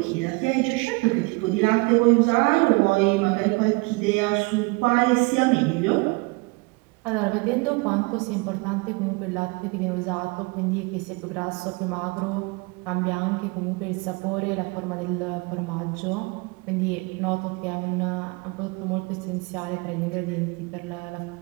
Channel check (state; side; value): quieter; left; 27.1 dB